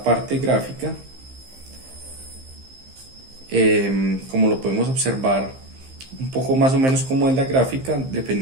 parte gráfica. Como lo podemos observar un poco más o menos como en la gráfica,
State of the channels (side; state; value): left; late; 15 ms